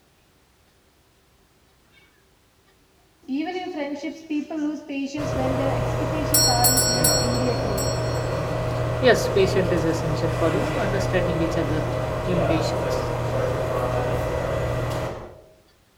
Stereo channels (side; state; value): both; identical; correlation 1.00